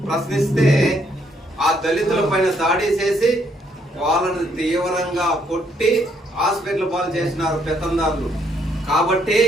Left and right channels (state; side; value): normal; both; correlation 0.71